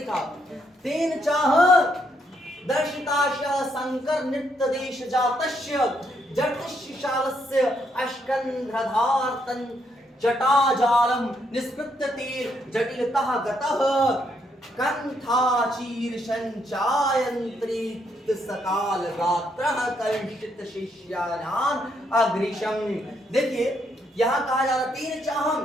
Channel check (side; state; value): both; normal; correlation 0.75